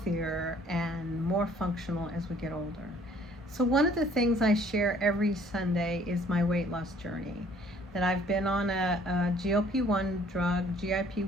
and more functional as we get older. So one of the things I share every Sunday is my weight loss journey. That I've been on a GLP-1 drug,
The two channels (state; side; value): normal; both; correlation 0.58